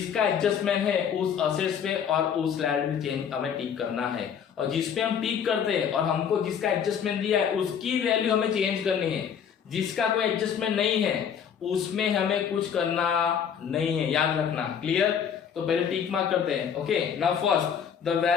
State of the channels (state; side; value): quieter; right; 7.8 dB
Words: एडजस्टमेंट है उस असेट्स पे और उस लायबिलिटी चेंज हमें टिक करना है, और जिस पे हम टिक करते हैं और हमको जिसका एडजस्टमेंट दिया है उसकी वैल्यू हमें चेंज करनी है. जिसका कोई एडजस्टमेंट नहीं है उसमें हमें कुछ करना नहीं है, याद रखना. क्लियर? तो पहले टिक मार्क करते हैं. Okay, now first the